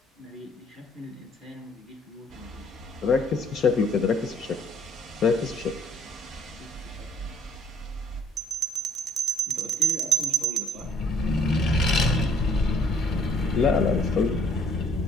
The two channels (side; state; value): both; normal; correlation 0.61